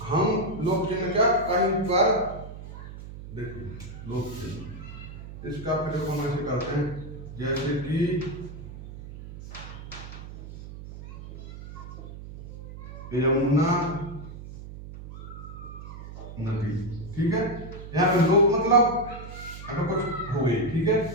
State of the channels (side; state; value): right; noise; hum, 12 dB below the sound